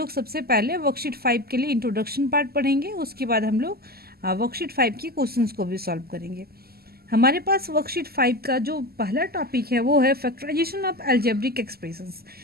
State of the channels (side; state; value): left; late; 0.45 ms